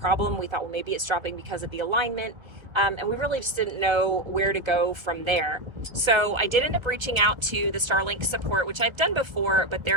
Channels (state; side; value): late; left; 1.3 ms